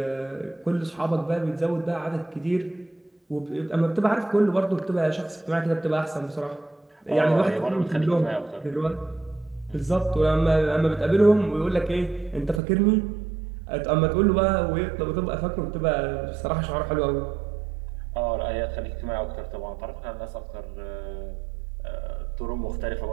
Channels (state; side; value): drops out; left; at 12.6 s